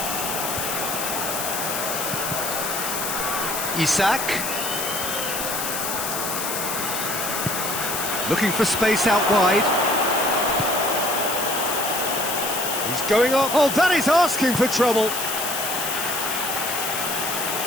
Isak. Looking for space out wide. He's going up. Oh, that is asking for trouble.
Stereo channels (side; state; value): left; noise; hiss, 3 dB below the sound